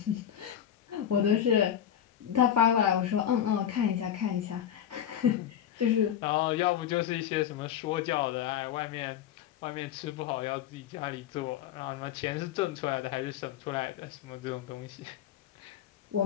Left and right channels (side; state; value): right; quieter; 9.9 dB